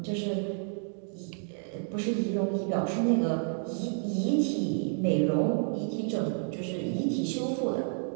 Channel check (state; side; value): silent; left; 58 dB below the other